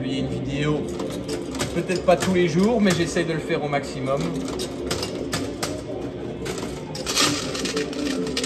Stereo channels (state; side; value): identical; both; correlation 1.00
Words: une vidéo, peut-être pas tous les jours, mais j'essaye de le faire au maximum.